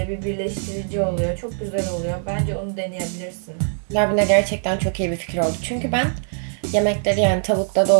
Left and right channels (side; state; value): left; silent; 64 dB below the other